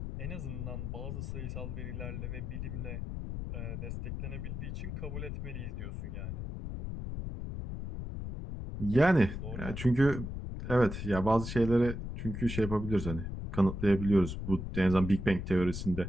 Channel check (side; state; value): left; noise; rumble, 6 dB below the sound